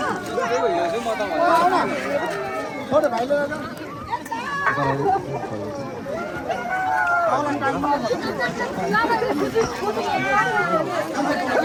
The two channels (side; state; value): both; identical; correlation 1.00